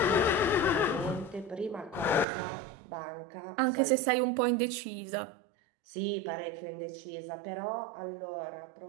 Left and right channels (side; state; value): left; drops out; at 2.2 s